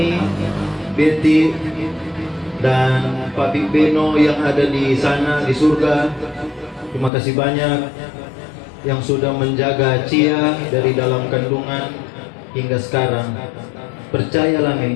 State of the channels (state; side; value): drops out; right; at 7.1 s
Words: Betty, dan Papi Beno yang ada di sana di surga. Terima kasih banyak yang sudah menjaga Cia dari dalam kandungan hingga sekarang. Percayalah Mi,